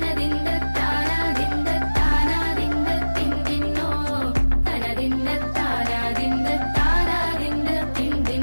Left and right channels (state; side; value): inverted; both; correlation -1.00